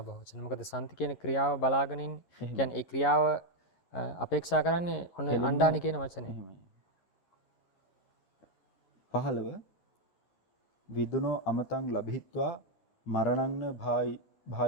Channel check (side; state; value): right; late; 11 ms